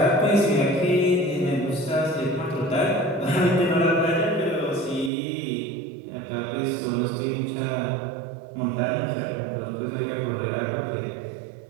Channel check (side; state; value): left; drops out; at 5.1 s